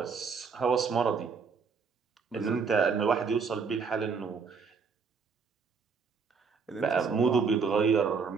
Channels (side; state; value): left; quieter; 5.4 dB